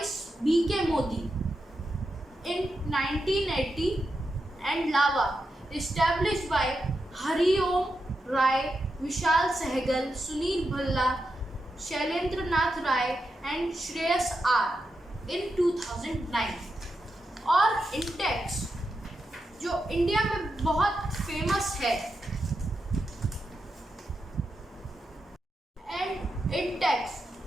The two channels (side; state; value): both; normal; correlation 0.87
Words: BK Modi in 1980 and Lava established by Hariom Rai, Vishal Sehgal, Sunil Bhalla, Shailendra Nath Rai and Shreyas R in 2009। और इंटेक्स, जो इंडिया में बहुत फेमस है, and Intex